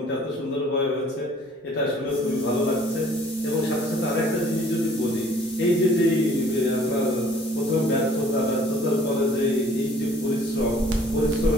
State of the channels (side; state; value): both; normal; correlation 0.55